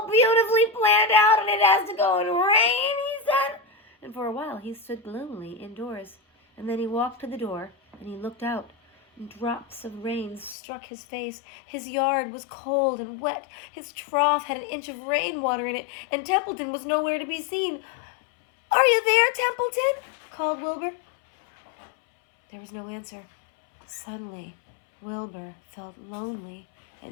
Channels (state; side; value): drops out; right; at 10.6 s